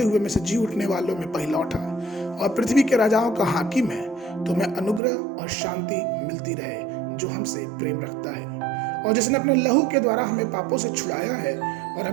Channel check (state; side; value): drops out; left; at 5.0 s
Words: हुए में से जी उठने वालों में पहला उठा और पृथ्वी के राजाओं का हाकिम है, तुम्हें अनुग्रह और शांति मिलती रहे जो हमसे प्रेम रखता है, और जिसने अपने लहू के द्वारा हमें पापों से छुड़ाया है और